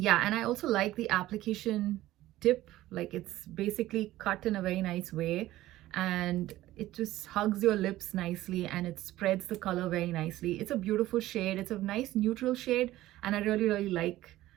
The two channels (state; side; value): quieter; left; 15.6 dB